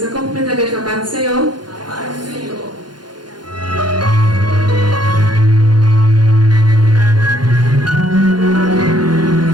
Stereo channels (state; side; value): late; left; 0.71 ms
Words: cumprimento a igreja com a paz do Senhor. Paz do Senhor.